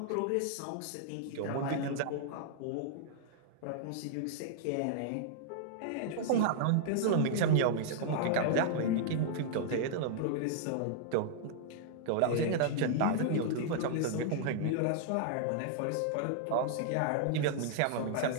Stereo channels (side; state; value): both; different; correlation -0.01